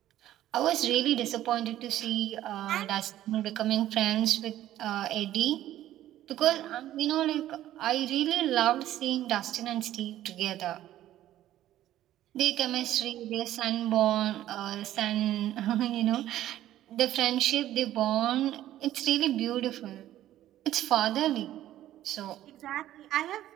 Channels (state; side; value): quieter; left; 13.3 dB